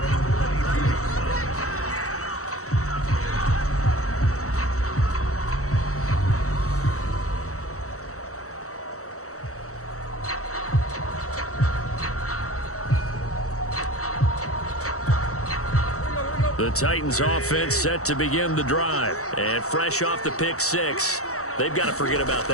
The Titans offense set to begin the drive. And fresh off the pick six, they've got to forget about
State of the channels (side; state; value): right; late; 0.65 ms